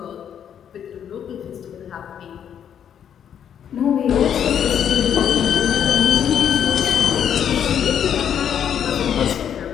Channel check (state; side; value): quieter; right; 8.9 dB